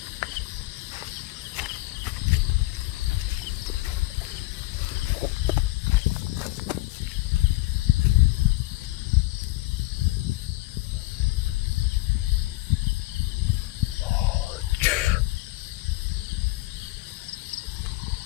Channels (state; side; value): quieter; right; 19.9 dB